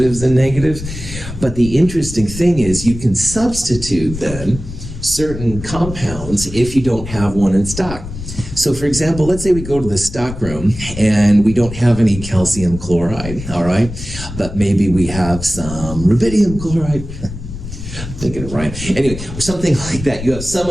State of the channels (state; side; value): noise; left; rumble, 10 dB below the sound